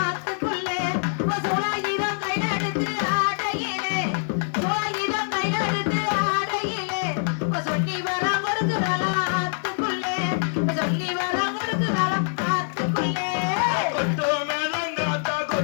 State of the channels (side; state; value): right; silent; 62 dB below the other